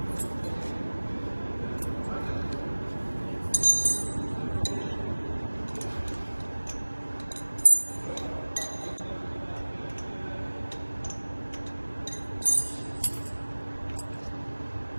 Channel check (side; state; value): both; inverted; correlation -1.00